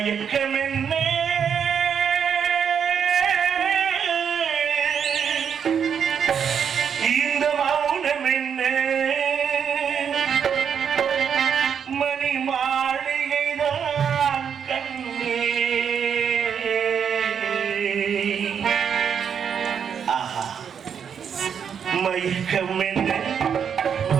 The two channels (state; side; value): quieter; left; 7.5 dB